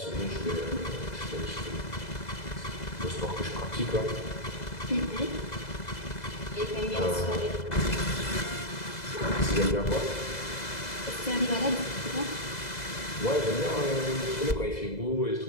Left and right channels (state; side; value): late; right; 2.0 ms